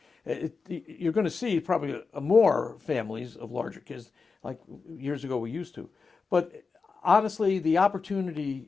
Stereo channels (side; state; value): right; quieter; 4.7 dB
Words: you're going to see probably more families of larger kids like years ago we used to. But honestly, the opportunity